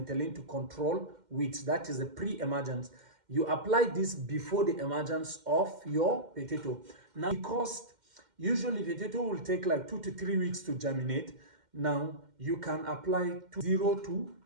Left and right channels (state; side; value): late; left; 2.1 ms